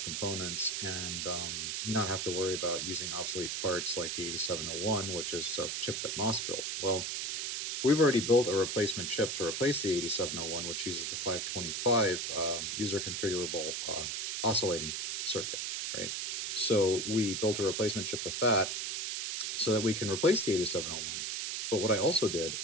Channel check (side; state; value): right; noise; hiss, 2 dB below the sound